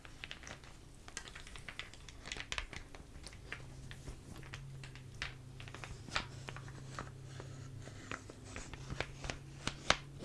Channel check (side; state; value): both; identical; correlation 1.00